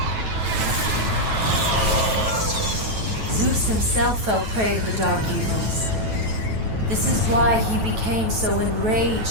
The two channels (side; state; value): left; late; 9.2 ms